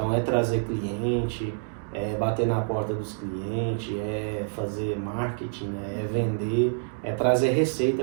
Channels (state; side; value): silent; left; digital silence